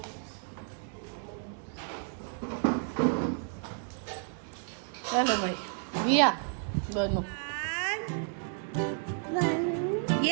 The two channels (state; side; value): silent; left; 57 dB below the other